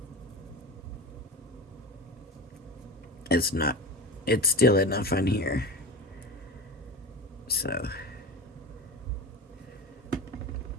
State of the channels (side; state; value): both; normal; correlation 0.28